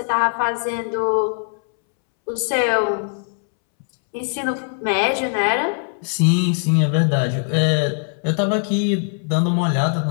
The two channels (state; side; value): silent; right; 65 dB below the other